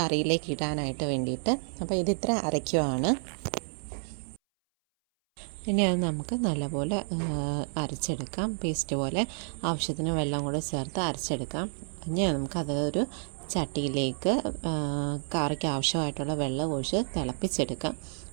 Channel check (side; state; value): left; silent; 58 dB below the other